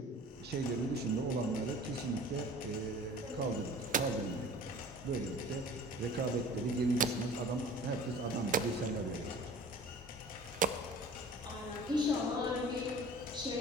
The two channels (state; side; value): normal; both; correlation 0.44